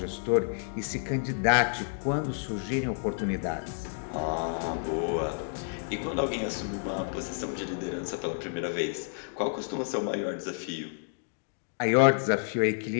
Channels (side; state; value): right; silent; digital silence